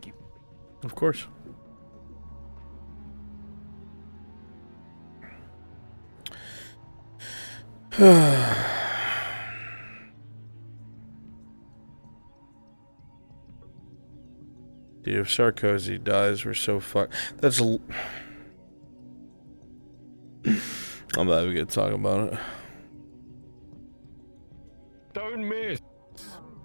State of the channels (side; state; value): both; inverted; correlation -1.00